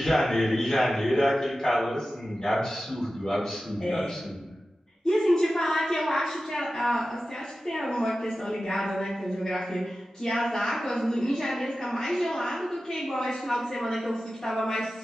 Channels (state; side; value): normal; both; correlation 0.94